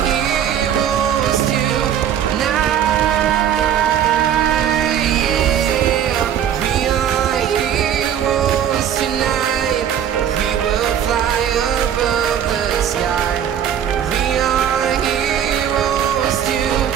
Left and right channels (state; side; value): quieter; left; 9.5 dB